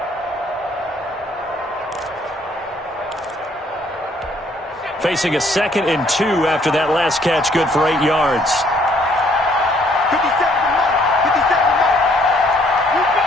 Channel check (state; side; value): normal; both; correlation 0.64